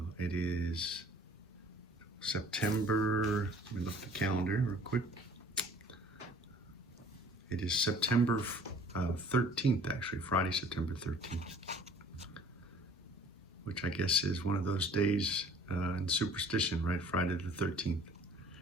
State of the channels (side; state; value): both; normal; correlation 0.51